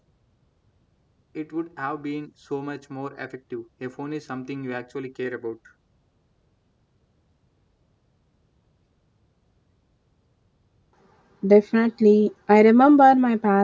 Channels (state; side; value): identical; both; correlation 1.00